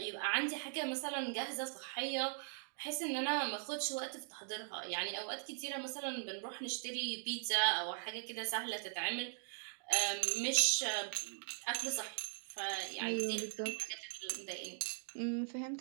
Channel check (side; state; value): left; silent; digital silence